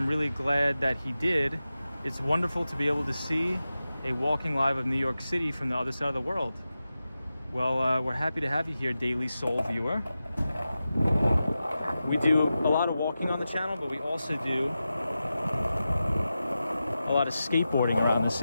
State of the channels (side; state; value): both; inverted; correlation -0.93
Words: really glad that he did. It's wonderful to be able to see a walking live of New York City from the other side of the world. Well, we're happy to have you here, Daily Soul viewer. We do a lot of walking on the channel, but we also do a lot of skateboarding around the